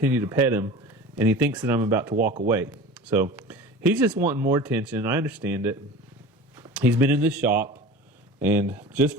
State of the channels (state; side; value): normal; both; correlation 0.37